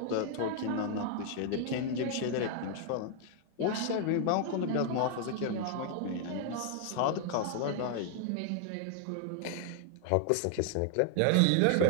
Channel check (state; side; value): different; both; correlation 0.00